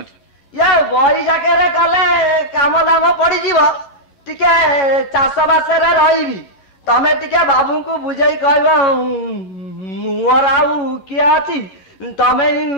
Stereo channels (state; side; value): late; right; 11 ms